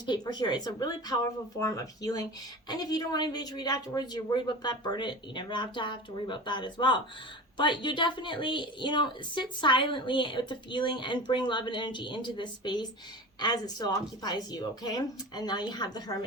paper here. It's a really powerful form of healing. And if you don't want anybody to read afterwards, you're worried about that, burn it. You never have to worry about that as well. But you definitely, sit silently with the feeling and bring love and energy into this space as it still occupies you, okay? And now you have the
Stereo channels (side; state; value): both; normal; correlation 0.33